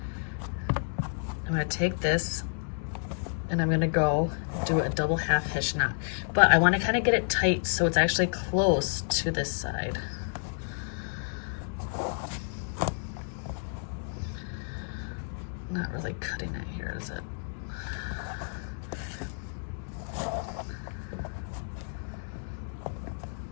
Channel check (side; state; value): right; silent; digital silence